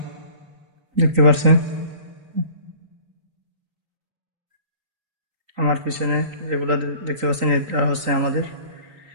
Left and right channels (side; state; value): left; late; 3.9 ms